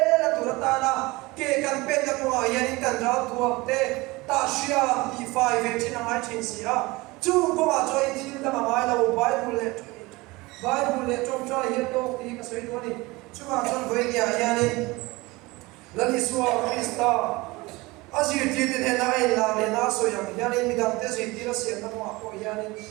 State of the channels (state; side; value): quieter; left; 22.4 dB